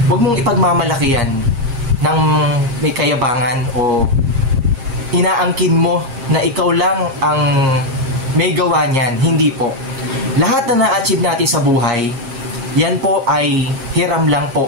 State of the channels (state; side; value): late; left; 7.5 ms